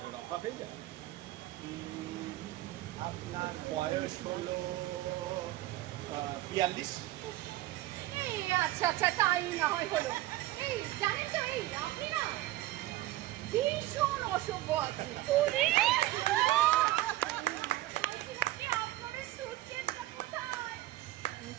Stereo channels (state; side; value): quieter; left; 16.1 dB